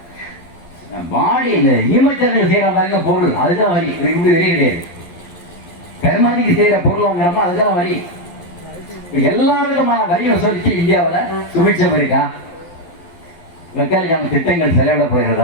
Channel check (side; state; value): right; late; 11 ms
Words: பாடி இந்த ஈமச்சரங்க செய்கிற மாதிரி பொருள் அதுதான் வரி. இப்படி வரி கிடையாது. கருமாதிக்கு செய்கிற பொருள் வாங்குறப்ப அதுதான் வரி. எல்லா விதமான வரி வசூலிச்சு இந்தியாவில் சுமிச்சம் இருக்கா? வெக்காலிக்கான திட்டங்கள் செலவிட